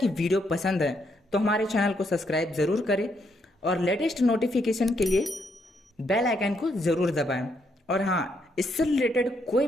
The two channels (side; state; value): both; normal; correlation 0.76